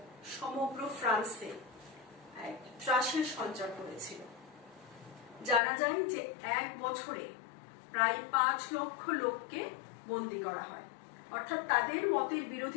সমগ্র ফ্রান্সে এক ত্রাসের সঞ্চার করেছিল। জানা যায় যে এক বছরে প্রায় 5 লক্ষ লোককে বন্দী করা হয়, অর্থাৎ তাদের মতের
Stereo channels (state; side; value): drops out; right; at 5.6 s